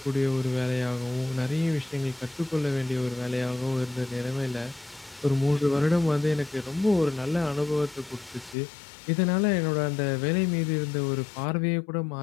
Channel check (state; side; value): drops out; right; at 8.6 s